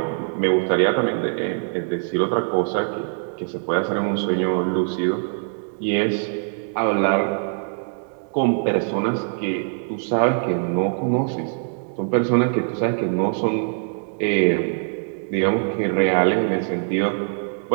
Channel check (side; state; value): left; silent; digital silence